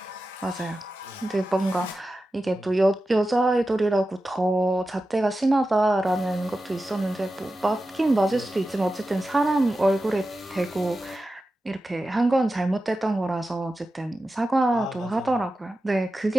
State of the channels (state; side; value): normal; both; correlation 0.92